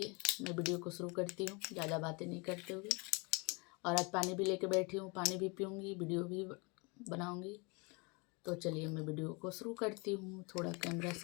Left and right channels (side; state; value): right; quieter; 29.8 dB